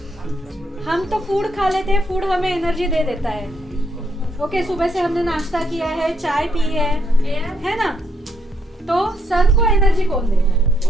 हम तो फूड खा लेते हैं, फूड हमें एनर्जी दे देता है। ओके, सुबह से हमने नाश्ता किया है, चाय पी है ना? तो सन को एनर्जी कौन देता है?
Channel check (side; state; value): both; normal; correlation 0.74